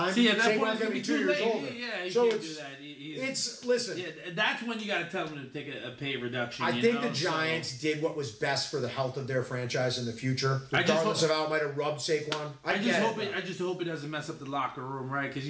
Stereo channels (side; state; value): both; identical; correlation 1.00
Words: Saquon's going to be 2 years older. Yeah, you so can't do that. Listen. Yeah, that's when you got to tell them to take a pay reduction. I think the Giants did what was best for the health of their franchise in the future, regardless of how it might have rubbed Saquon. I just hope it doesn't mess up the locker room, right? Because